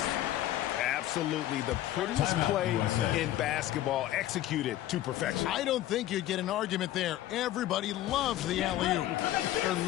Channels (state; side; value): quieter; right; 13.8 dB